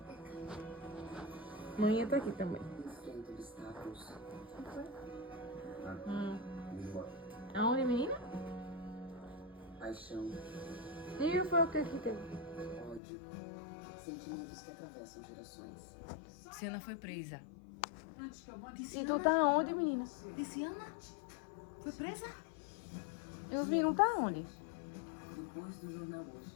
Mãe tá aqui também. Aonde, menina? Paixão, E foi o que teve? ódio, sentimentos que atravessam gerações. Ciana foi presa. E tu tá onde, menina? Ciana? Foi presa? E os meninos tá onde? Depois do jornal hoje,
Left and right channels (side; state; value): right; drops out; at 13.0 s